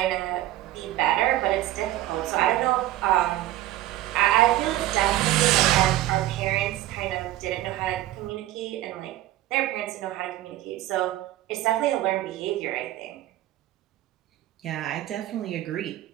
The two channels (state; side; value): quieter; left; 14.9 dB